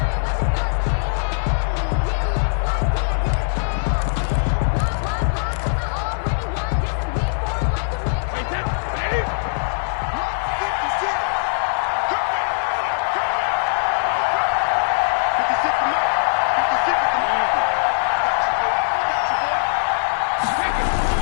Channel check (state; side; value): silent; right; digital silence